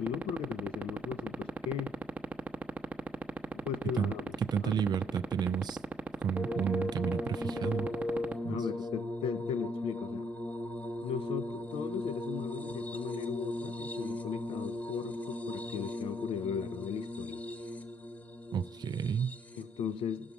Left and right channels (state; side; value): normal; both; correlation 0.68